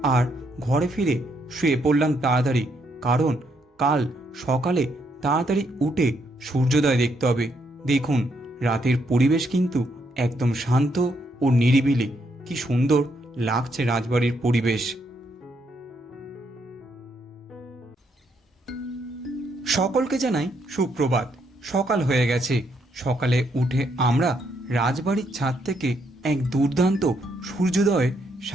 আর ঘরে ফিরে শুয়ে পড়লাম তাড়াতাড়ি, কারণ কাল সকালে তাড়াতাড়ি উঠে সূর্যোদয় দেখতে হবে। দেখুন রাতের পরিবেশ কিন্তু একদম শান্ত ও নিরিবিলি। কি সুন্দর লাগছে রাজবাড়ির পরিবেশ। সকলকে জানাই সুপ্রভাত। সকাল হয়ে গেছে। সকালে উঠে আমরা রাজবাড়ির ছাদ থেকে এক দুর্দান্ত সূর্যোদয়ের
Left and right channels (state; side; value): normal; both; correlation 0.75